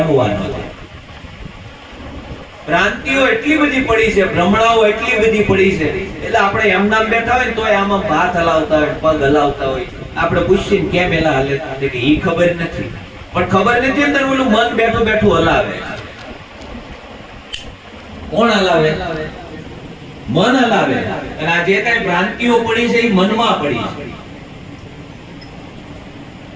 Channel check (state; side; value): identical; both; correlation 1.00